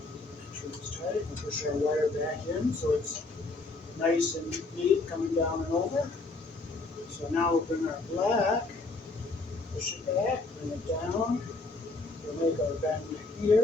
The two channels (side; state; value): right; quieter; 3.5 dB